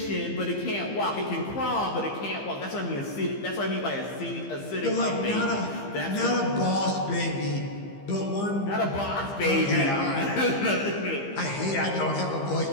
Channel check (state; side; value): late; right; 15 ms